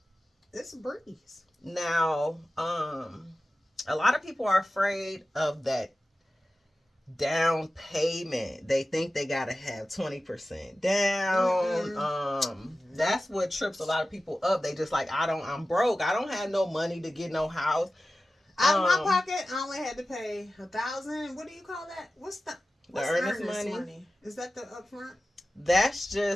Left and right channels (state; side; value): normal; both; correlation 0.95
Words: a breeze. Now, a lot of people are afraid of that down payment. They think they gotta have 20% down. That's what trips a lot of people up. They just like, I'm broke. I don't have no money to get no house. Out of my pocket, I only had to pay $1,000. What do you call that? What's earnest money? Is that the upfront? That's